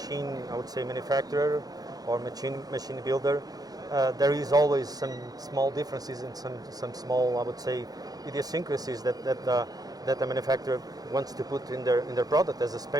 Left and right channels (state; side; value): late; left; 0.18 ms